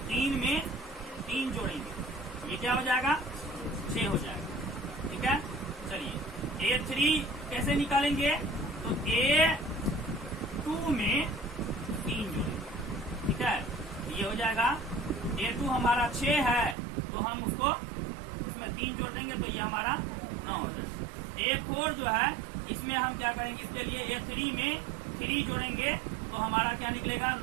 3 में 3 जोड़ेंगे, ये क्या हो जाएगा? 6 हो जाएगा। ठीक है, चलिए A3 कैसे निकालेंगे? तो A2 में 3 जोड़ेंगे। ठीक है, ये हो जाएगा A2 हमारा 6 है, तो हम उसको इसमें 3 जोड़ देंगे तो ये हमारा 9 हो जाएगा। A4 जो है, इसमें हम क्या करेंगे, इसके लिए A3 में 3 जोड़ेंगे तो हमारा क्या निकलेगा?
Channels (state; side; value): drops out; left; at 16.8 s